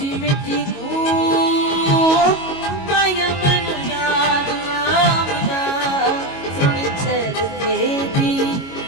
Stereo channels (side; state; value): right; late; 22 ms